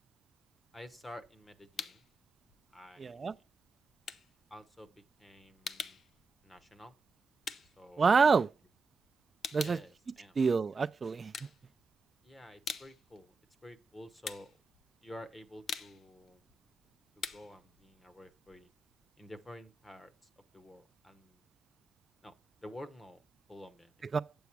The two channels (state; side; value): quieter; left; 4.0 dB